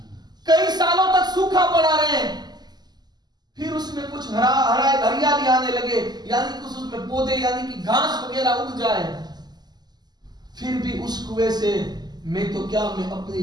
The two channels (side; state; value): left; late; 0.20 ms